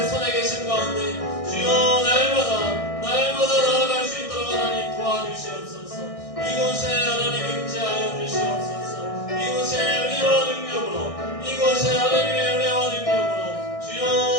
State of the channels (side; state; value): right; late; 1.6 ms